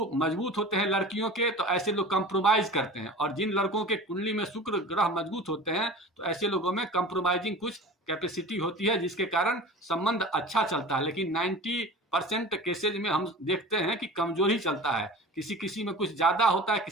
मजबूत होते हैं लड़कियों के, तो ऐसे लोग कंप्रोमाइज करते हैं। और जिन लड़कों के कुंडली में शुक्र ग्रह मजबूत होते हैं तो ऐसे लोगों में कंप्रोमाइजिंग कुछ कैपेसिटी होती है, जिसके कारण संबंध अच्छा चलता है। लेकिन 90% केसेज में हम देखते हैं कि कमजोर ही चलता है। किसी किसी में कुछ ज्यादा होता है,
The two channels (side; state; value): both; normal; correlation 0.37